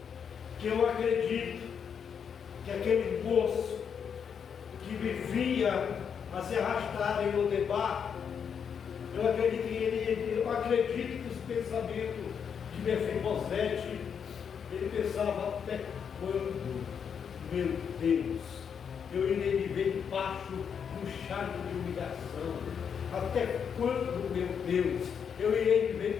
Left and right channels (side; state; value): right; quieter; 7.2 dB